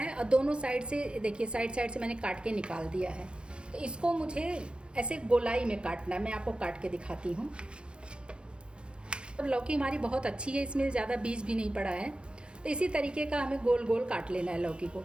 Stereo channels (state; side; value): late; left; 0.054 ms